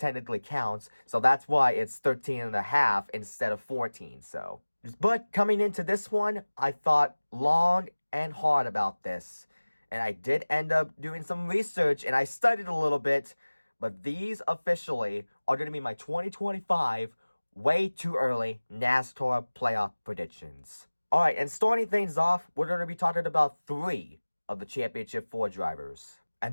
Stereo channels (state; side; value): inverted; both; correlation -1.00